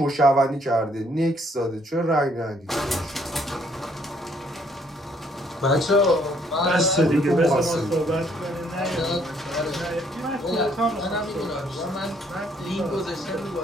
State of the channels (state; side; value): normal; both; correlation 0.66